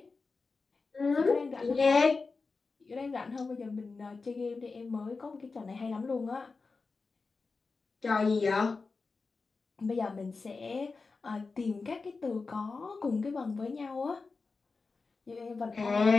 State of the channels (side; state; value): right; quieter; 4.2 dB